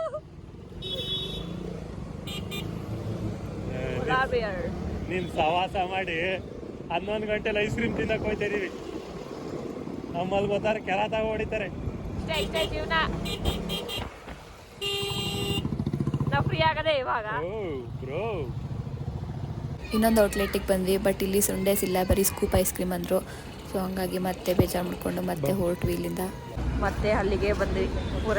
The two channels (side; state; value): both; identical; correlation 1.00